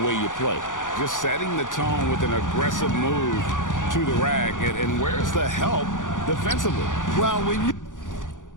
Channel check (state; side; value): late; right; 0.87 ms